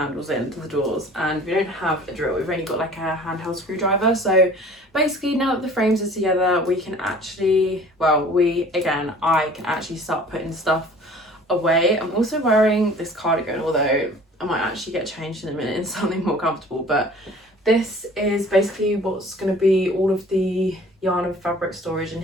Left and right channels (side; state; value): both; normal; correlation 0.48